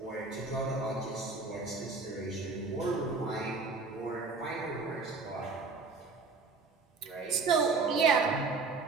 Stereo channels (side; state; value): left; quieter; 4.1 dB